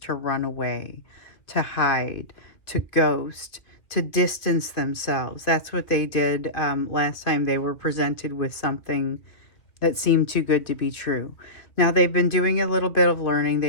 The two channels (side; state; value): right; late; 2.1 ms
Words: run away, to hide, to ghost, to distance themselves. That's what they did last time they were presented with something that seemed too good to be true. Now they've been doing a little bit of learning.